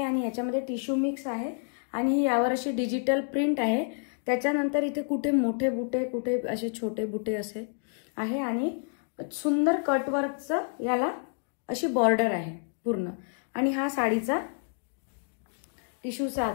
आणि याच्यामध्ये टिश्यू मिक्स आहे आणि ही यावर अशी डिजिटल प्रिंट आहे. त्याच्यानंतर इथे कुठे मोठे बुटे कुठे असे छोटे बुटे असे आहे आणि सुंदर कटवर्कचं याला अशी बॉर्डर आहे पूर्ण. आणि हा साडीचा टिश्यूचा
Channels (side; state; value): right; silent; 56 dB below the other